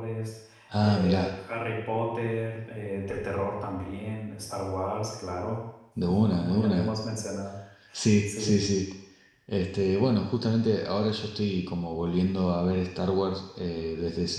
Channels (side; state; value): both; identical; correlation 1.00